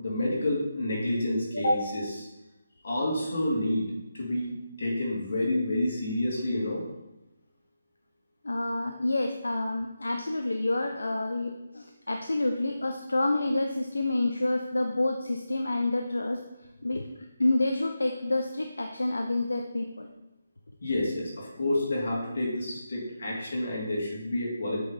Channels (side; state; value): both; inverted; correlation -0.90